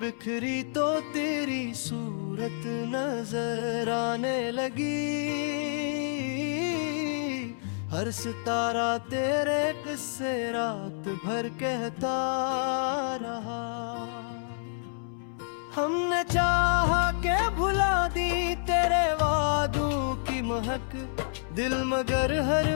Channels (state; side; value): silent; right; 59 dB below the other